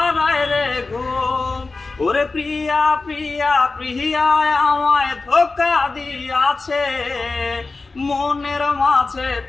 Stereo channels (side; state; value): right; quieter; 3.7 dB